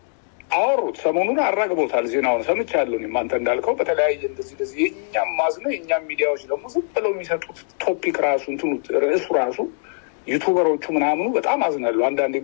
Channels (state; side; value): silent; right; 64 dB below the other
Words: አወሩት ሰሞኑን አራግቦታል ዜናውን ሰምቻለሁ አንተ እንዳልከው በተለያየ እንደዚህ የኛም ማዝነው የኛም ሚዲያዎች ደግሞ ዝም ብለው የሚሰጡት ቶፒክ ራሱ እንትኑ ርዕሱ ራሱ ዩቲዩበሮቹ ምናምኑ በጣም አዝናለሁ አንዳንዴ